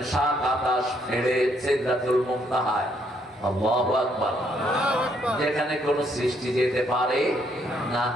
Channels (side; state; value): both; normal; correlation 0.70